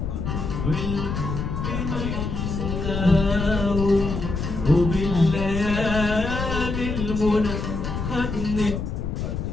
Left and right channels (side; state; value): left; noise; rumble, 3 dB below the sound